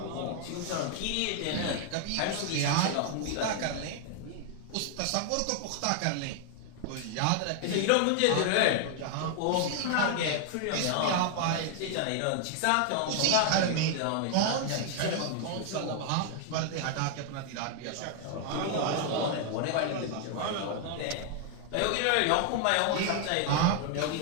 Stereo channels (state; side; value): different; both; correlation 0.00